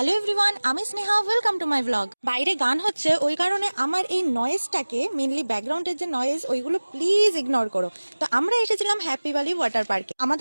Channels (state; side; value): inverted; both; correlation -1.00